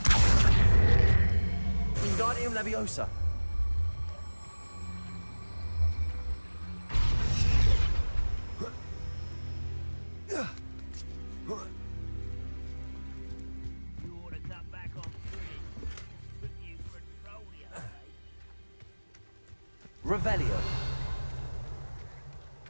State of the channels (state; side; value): inverted; both; correlation -1.00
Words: Wingardium Leviosa. Revelio.